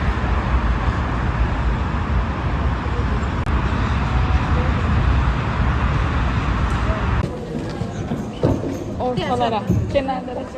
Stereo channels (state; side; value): identical; both; correlation 1.00